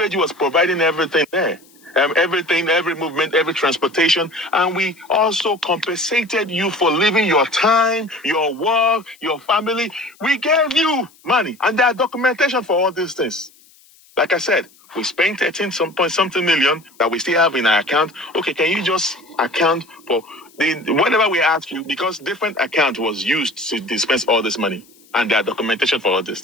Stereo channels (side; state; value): left; noise; hiss, 29 dB below the sound